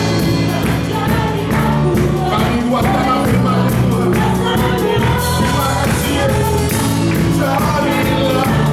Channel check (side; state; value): both; identical; correlation 1.00